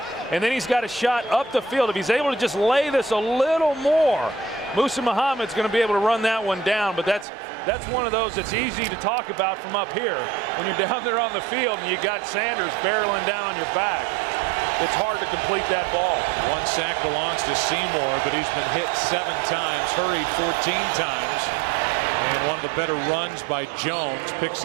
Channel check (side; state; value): left; drops out; at 7.2 s